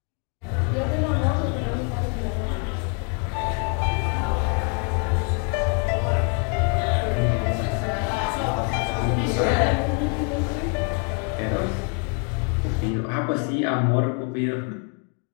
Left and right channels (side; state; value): right; quieter; 36.9 dB